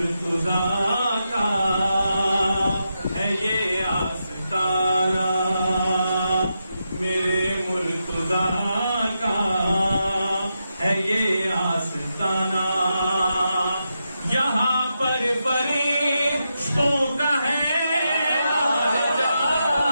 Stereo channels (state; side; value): inverted; both; correlation -0.86